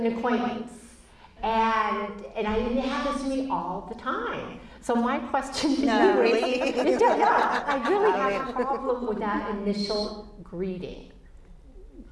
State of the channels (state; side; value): identical; both; correlation 1.00